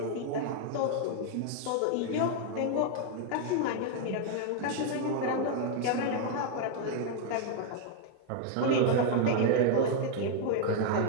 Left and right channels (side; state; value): both; different; correlation 0.00